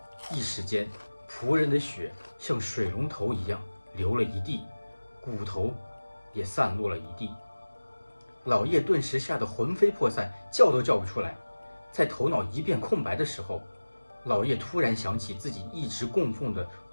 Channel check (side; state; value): both; inverted; correlation -1.00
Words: 一时间，仆人的血像水龙头一样流了一地，骨头也散落了一地。老叶顿时吓得魂飞魄散，叫都叫不出来。在头脑一片空白的时候，老叶突然想起自己一直供奉的